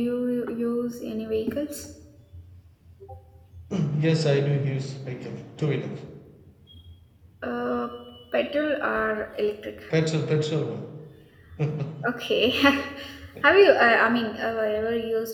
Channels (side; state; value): both; identical; correlation 1.00